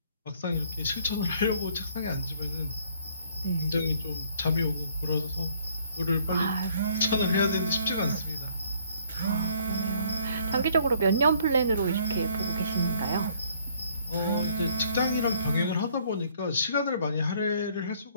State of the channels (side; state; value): both; inverted; correlation -0.62